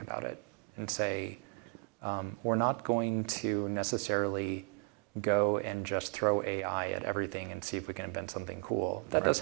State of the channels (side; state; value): left; quieter; 38.5 dB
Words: about it and say, we're not going to necessarily go and just throw AI at everything and see if we can invent something cool. That does